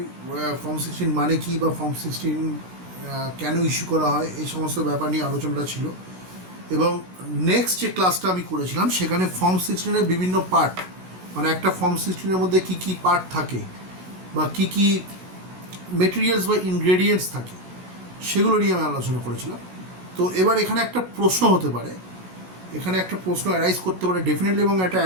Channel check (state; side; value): late; left; 16 ms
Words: ফর্ম 16 মানে কি বা ফর্ম 16 কেন ইস্যু করা হয় এই সমস্ত ব্যাপার নিয়ে আলোচনাটা ছিল। এবং নেক্সট যে ক্লাসটা আমি করেছিলাম সেখানে ফর্ম 16-এর বিভিন্ন পার্ট, মানে একটা ফর্ম 16-এর মধ্যে কী কী পার্ট থাকে বা কী কী মেটেরিয়ালস বা ইনগ্রেডিয়েন্টস থাকে সেগুলো নিয়ে আমি আলোচনা করেছিলাম। তো এবার এখানে একটা প্রশ্ন হতে পারে, এখানে একটা প্রশ্ন অ্যারাইজ করতে পারে ডেফিনেটলি, এবং এটা